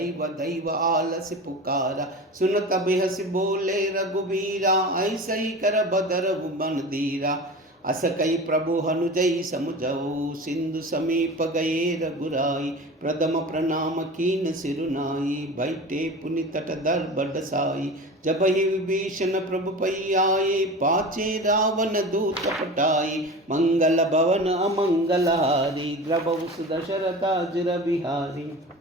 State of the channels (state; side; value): normal; both; correlation 0.33